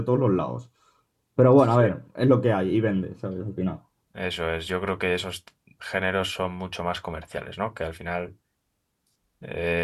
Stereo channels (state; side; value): identical; both; correlation 1.00